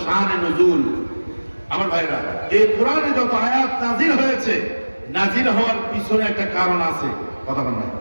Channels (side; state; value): both; inverted; correlation -1.00